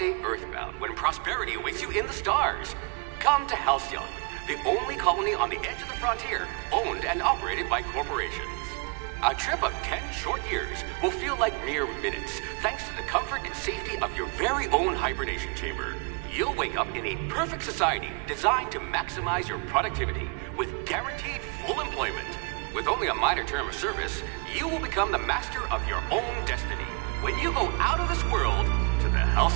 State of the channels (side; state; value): left; quieter; 35.7 dB